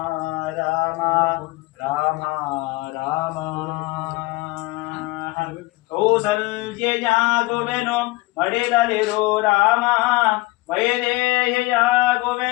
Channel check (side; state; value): right; quieter; 22.1 dB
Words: ರಾಮ ರಾಮ ರಾಮ ಕೌಸಲ್ಯಯಾಗುವೆನು ಮಡಿಲಲಿರೋ ರಾಮ